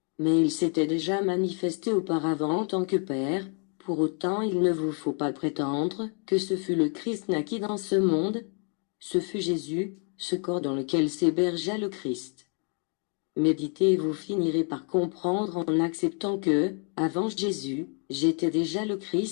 Mais il s'était déjà manifesté auparavant en tant que Père, pour autant il ne vous faut pas prétendre que ce fut le Christ naquit dans ce monde, ce fut Jésus, ce corps dans lequel s'hébergea le Christ. Méditez et vous finirez par comprendre en acceptant que, avant Jésus, j'étais déjà le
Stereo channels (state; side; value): quieter; right; 39.9 dB